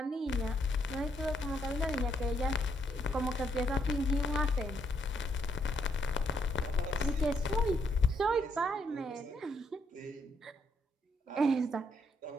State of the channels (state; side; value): normal; both; correlation 0.74